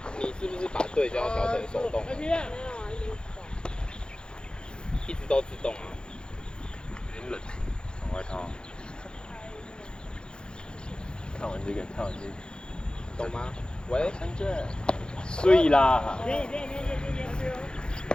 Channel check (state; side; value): late; right; 0.049 ms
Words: 你是不是把对焦调成手动？一直都自动啊。有点冷，穿外套。看完这个，看完这个，懂吗？喂，深圳，睡啦。